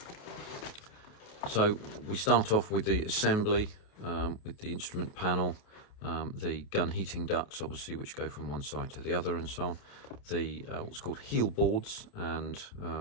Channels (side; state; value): right; late; 28 ms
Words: So we start off with the assembly, with the instrument panel, the gun heating ducts, obviously, which go from one side to the other, and so on. The what's called heel boards, and